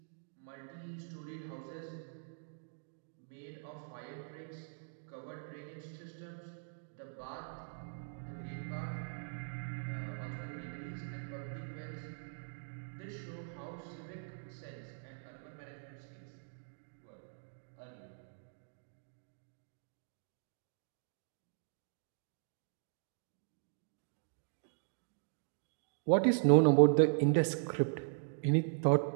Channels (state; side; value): silent; left; digital silence